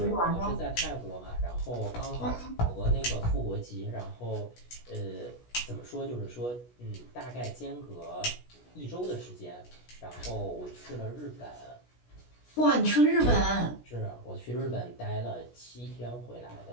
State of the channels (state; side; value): late; right; 16 ms